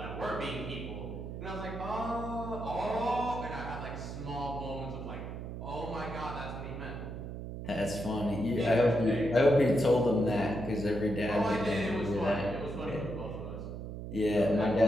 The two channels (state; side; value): noise; right; hum, 8 dB below the sound